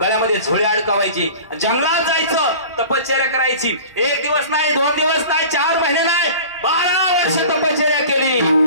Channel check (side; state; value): both; inverted; correlation -0.40